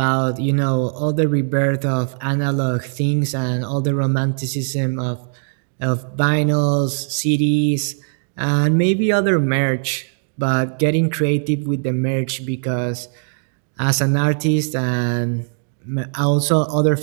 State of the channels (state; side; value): silent; left; digital silence